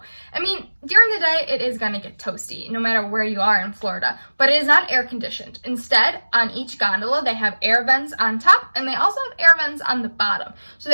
I mean, during the day, it is gonna get toasty, no matter where you are in Florida, but it is not air conditioned. Instead, on each gondola, they have air vents on top, and they also have air vents on the bottom. So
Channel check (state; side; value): inverted; both; correlation -1.00